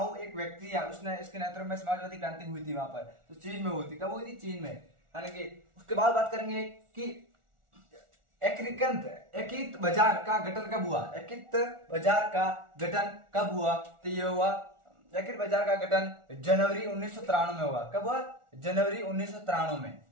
एक व्यक्ति है, उसने इसके नेतृत्व में समाजवादी क्रांति हुई थी वहां पर। तो चीन में हुई थी। कब हुई थी? चीन में। यानी कि उसके बाद बात करेंगे कि एकीकृत बाजार का गठन कब हुआ। एकीकृत बाजार का गठन कब हुआ? तो ये हुआ एकीकृत बाजार का गठन जनवरी 1993 में हुआ। कब हुआ? जनवरी 1993 में।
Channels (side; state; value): left; late; 1.4 ms